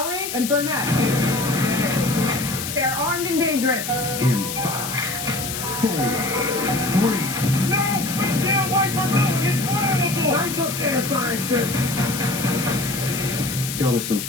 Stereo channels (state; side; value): noise; left; hiss, 6 dB below the sound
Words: and Burnett. They're armed and dangerous. In 5, 4, 3. No! We can't wait for nothing! It's flammable! Lights up there, scientist! Y'all are some